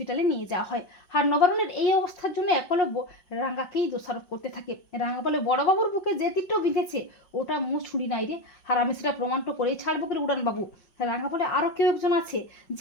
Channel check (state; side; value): late; right; 5.6 ms